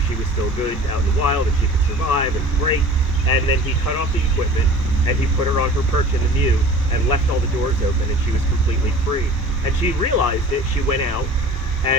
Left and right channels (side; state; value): both; normal; correlation 0.43